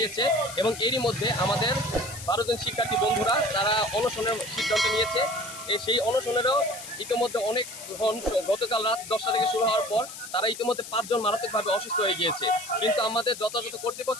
এবং এরই মধ্যে আমাদের 12 জন শিক্ষার্থী বন্ধুরা তারা অনশনের সিদ্ধান্ত নিয়েছে। সেই অনশনেরও ইতিমধ্যে অনেক গতকাল রাত 10টা থেকে শুরু হওয়ার পর তারা ইতিমধ্যে 5 জন মারাত্মকভাবে অসুস্থ হয়ে গিয়েছে। কিন্তু আমাদের যথাযথ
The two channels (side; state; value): left; noise; hiss, 12 dB below the sound